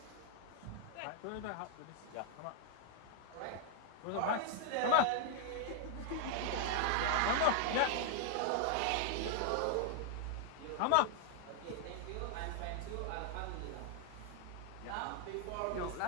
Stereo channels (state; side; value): different; both; correlation 0.00